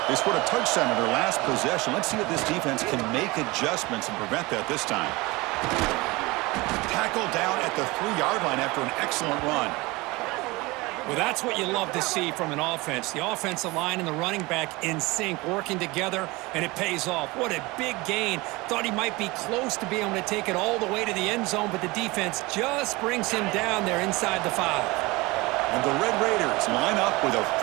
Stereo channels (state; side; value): quieter; left; 22.9 dB